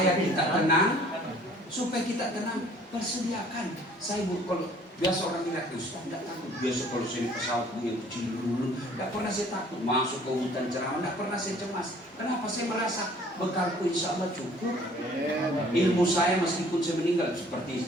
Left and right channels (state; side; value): normal; both; correlation 0.55